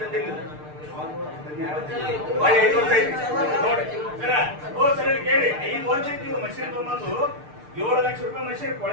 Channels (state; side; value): late; left; 6.6 ms